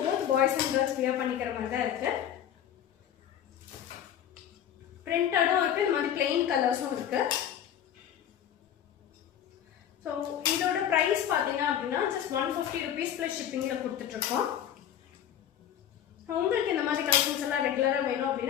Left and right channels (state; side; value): quieter; right; 10.0 dB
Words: both boys and girls wear பண்ணிக்கிற மாதிரி தான் இருக்குது. பிரிண்டடும் இருக்குது, இந்த மாதிரி பிளெயின் கலர்ஸும் இருக்குது. ஸோ இதோட ப்ரைஸ் பார்த்தீங்க அப்படின்னா ஜஸ்ட் 150 rupees ப்ளஸ் ஷிப்பிங்கில் கொடுத்துட்ருக்கோம். உங்களுக்கு இந்த மாதிரி கலெக்ஷன்ஸ் எல்லாம் ரெகுலராக வேணும்